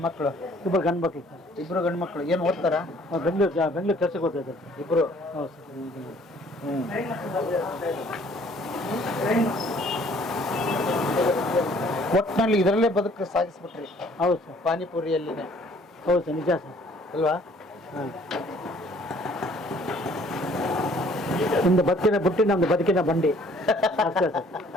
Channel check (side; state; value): both; normal; correlation 0.58